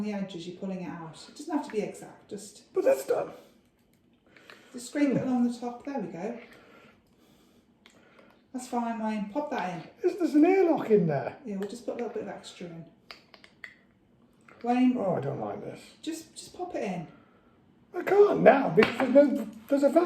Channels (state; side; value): identical; both; correlation 1.00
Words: the edges, you're pulling it out. It doesn't have to be exact, just But that's done. scrape it along the top. There we go. That's fine, Wayne. Pop that in. There's an airlock in there. Yeah, we'll just put a little bit of extra in. Wayne, Oh, I don't like this. just pop it in. I can't now because there's a